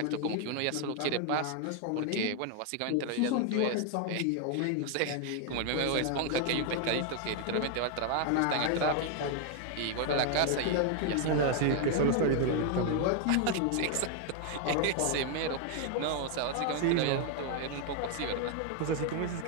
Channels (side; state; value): both; different; correlation 0.00